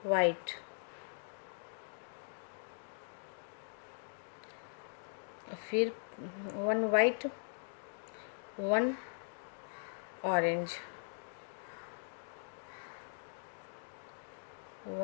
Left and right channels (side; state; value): right; silent; digital silence